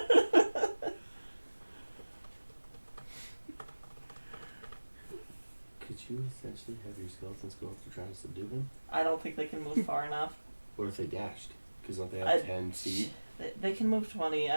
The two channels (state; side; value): inverted; both; correlation -1.00